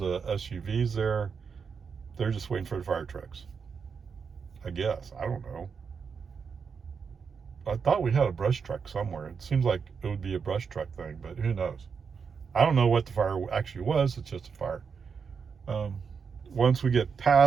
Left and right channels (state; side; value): quieter; left; 6.0 dB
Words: there. They're just waiting for the fire trucks, I guess. I don't know. I thought we had a brush truck somewhere. It seems like it would be a brush truck thing, but who knows? I don't know what the fire actually was. It's just a fire. Once we get